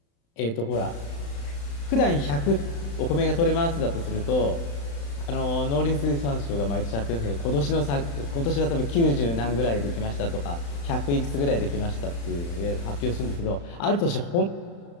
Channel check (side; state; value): right; late; 35 ms